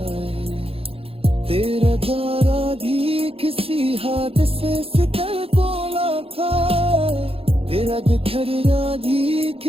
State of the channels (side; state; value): left; late; 0.27 ms